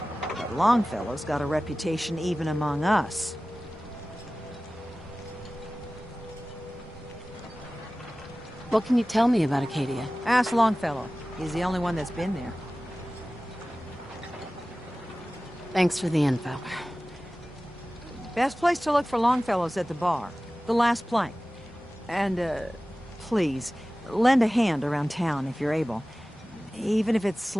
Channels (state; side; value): normal; both; correlation 0.97